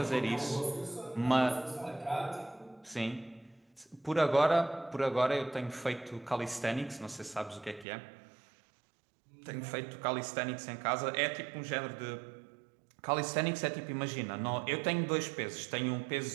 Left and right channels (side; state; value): left; drops out; at 7.9 s